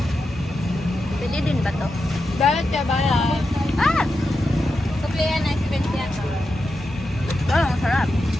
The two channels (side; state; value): both; normal; correlation 0.88